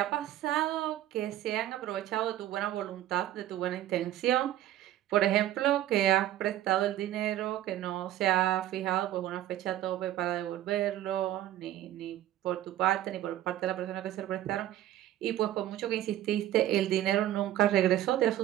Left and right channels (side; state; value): left; quieter; 13.1 dB